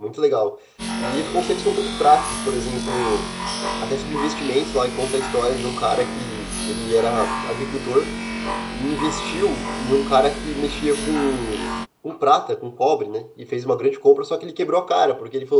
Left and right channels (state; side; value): identical; both; correlation 1.00